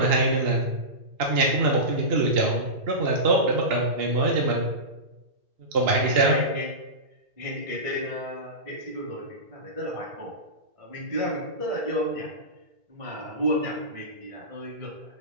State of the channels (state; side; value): late; left; 2.8 ms